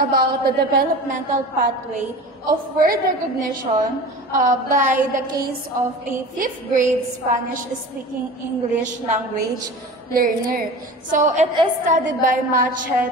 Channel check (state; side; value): normal; both; correlation 0.36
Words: the developmental pathway of word recognition by the case of a 5th grade Spanish-speaking English language learner. So it is studied by Matchett